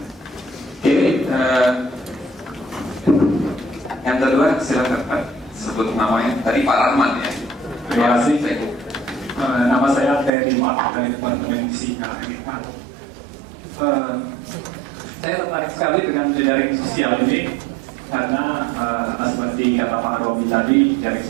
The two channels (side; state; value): left; drops out; at 10.3 s